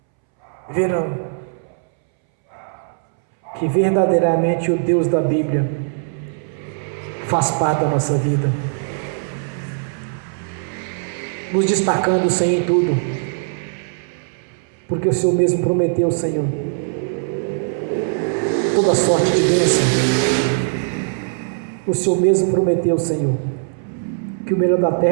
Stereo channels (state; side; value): silent; left; 65 dB below the other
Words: verão que verdadeiramente o Deus da Bíblia faz parte da nossa vida, nos destacando, Senhor, em tudo, porque o Senhor mesmo prometeu, Senhor, toda sorte de bênção. O Senhor mesmo prometeu, Senhor, que o melhor da